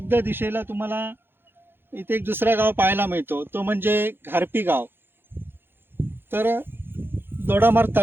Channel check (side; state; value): left; late; 0.10 ms